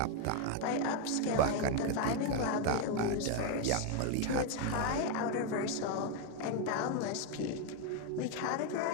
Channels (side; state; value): both; different; correlation 0.01